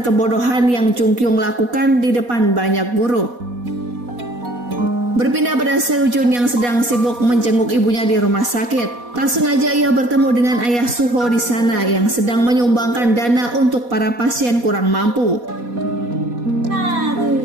kebodohan yang Jungkyung lakukan di depan banyak guru. Berpindah pada Seojun yang sedang sibuk menjenguk ibunya di rumah sakit. Tak sengaja ia bertemu dengan ayah Suho di sana yang sedang menyumbangkan dana untuk para pasien kurang mampu.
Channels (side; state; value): left; late; 4.2 ms